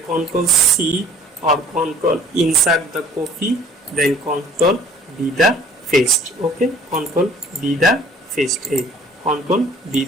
C or Ctrl insert the copy, then Ctrl B the paste. Okay, Ctrl B the paste. Ctrl B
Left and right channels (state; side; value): normal; both; correlation 0.52